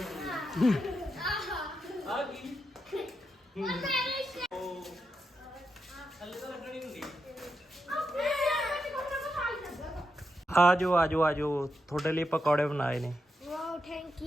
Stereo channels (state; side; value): normal; both; correlation 0.85